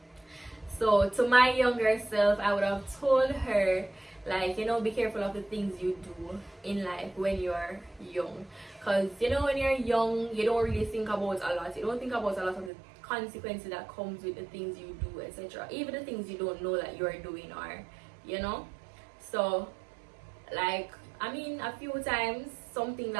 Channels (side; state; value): left; drops out; at 12.7 s